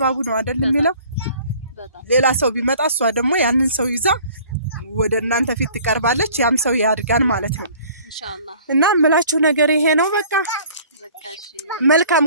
ነው አይደል የሚለው ሌላ ሰው ቢመጣ እሷ ደግሞ ያንን ሰው ይዛ ወደ እናንተ ፊት ትቀርባለች። ያም ሰው ያድጋል ማለት ነው ኢንሻአላህ። እና ምላችሁ ነገር ይሄ ነው። በቃ መልካም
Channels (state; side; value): inverted; both; correlation -0.51